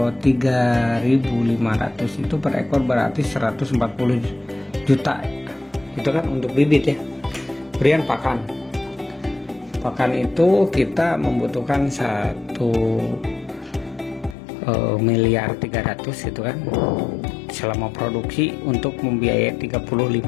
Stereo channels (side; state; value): right; drops out; at 14.4 s